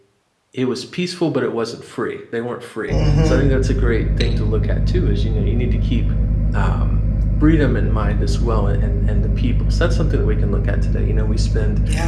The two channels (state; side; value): identical; both; correlation 1.00